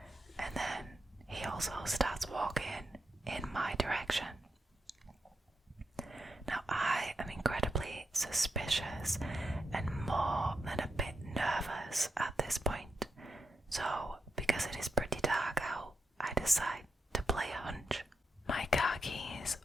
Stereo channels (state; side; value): normal; both; correlation 0.85